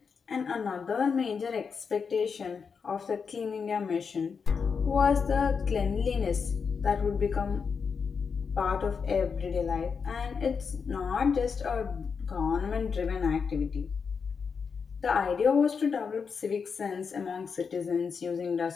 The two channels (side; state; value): right; quieter; 5.8 dB